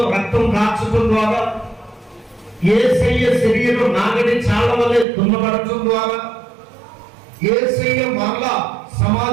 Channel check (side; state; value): left; drops out; at 5.1 s